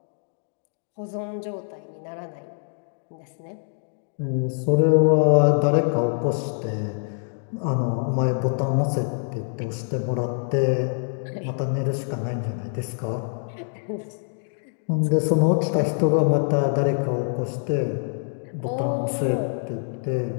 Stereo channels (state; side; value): silent; right; digital silence